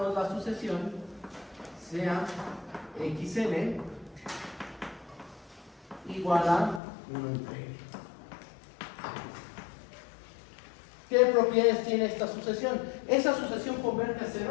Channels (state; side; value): drops out; right; at 6.8 s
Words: la sucesión, sea xn igual a 1 entre n. ¿Qué propiedades tiene esta sucesión? ¿Esa sucesión converge a 0?